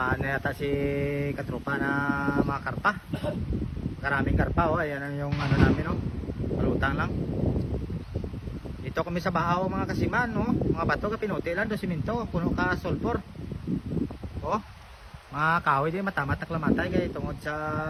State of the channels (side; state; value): both; identical; correlation 1.00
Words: na yata si katropa na mga karpa. Karaming karpa, oh. Ayan yung ano namin, oh. Malutang lang. Dito kami sa Bahaw mga kasiman, oh. Mga bato ka pinuti lang do siminto, puno ka sulfur. Oh. Mga kahoy din matamat na klamatay kay tungod sa